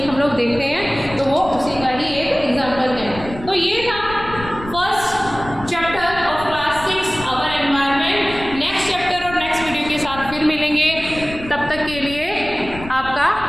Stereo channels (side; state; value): left; noise; rumble, 14 dB below the sound